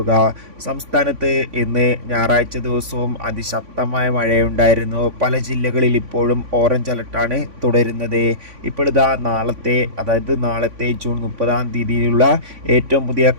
സംസ്ഥാനത്ത് ഇന്ന് ഞായറാഴ്ച ദിവസവും അതിശക്തമായ മഴയുണ്ടായിരുന്നു. പല ജില്ലകളിൽ ഇപ്പോഴും ഓറഞ്ച് അലർട്ടാണ് തുടരുന്നത്. ഇപ്പോഴിതാ നാളത്തെ ജൂൺ 30 ഏറ്റവും പുതിയ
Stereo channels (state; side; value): late; left; 3.5 ms